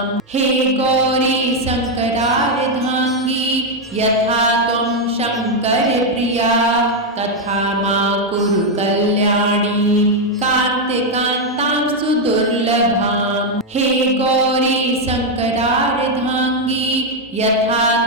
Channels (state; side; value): normal; both; correlation 0.02